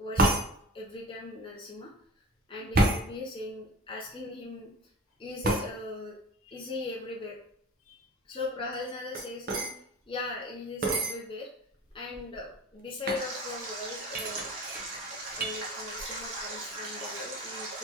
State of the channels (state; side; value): normal; both; correlation 0.38